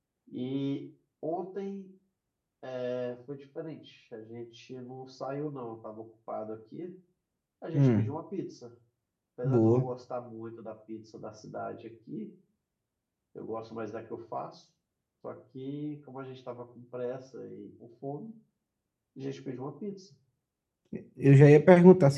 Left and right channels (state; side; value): identical; both; correlation 1.00